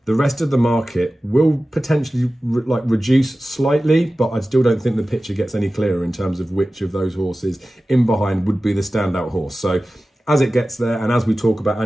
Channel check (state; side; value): normal; both; correlation 0.96